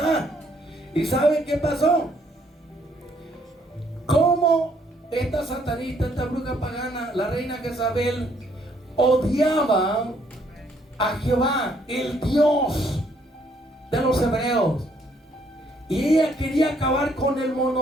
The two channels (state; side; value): normal; both; correlation 0.68